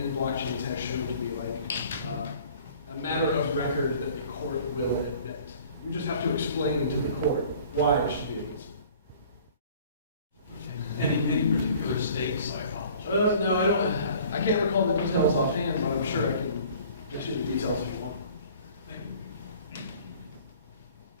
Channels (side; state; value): both; inverted; correlation -0.51